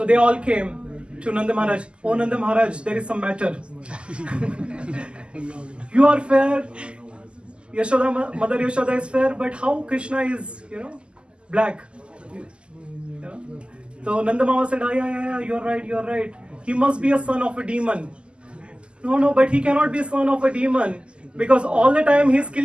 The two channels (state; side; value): late; left; 0.051 ms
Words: they all came to Nanda Maharaj. Oh Nanda Maharaj, there is some matter. You are fair. Mother Yashoda is fair, but how Krishna is, black? So Nanda Mama said, yeah, you're right. He must be a son of a demon. No, but he cannot be a son of a demon, because all the time he's